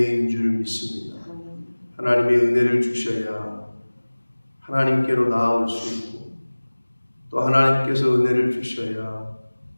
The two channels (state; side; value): inverted; both; correlation -1.00